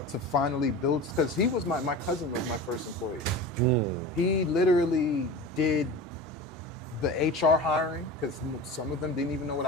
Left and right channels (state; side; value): normal; both; correlation 0.32